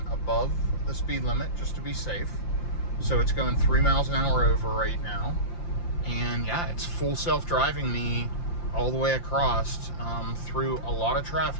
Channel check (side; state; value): right; late; 5.8 ms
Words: above the speed limit, just to be safe. So it's going 3 miles an hour over right now. And yeah, it's full self-driving me all the way across through a lot of